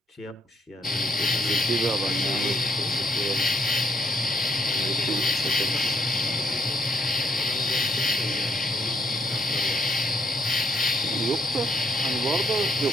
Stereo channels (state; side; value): normal; both; correlation 0.72